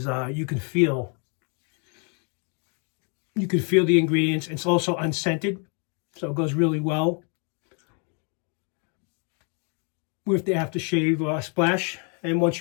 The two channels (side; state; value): right; quieter; 38.0 dB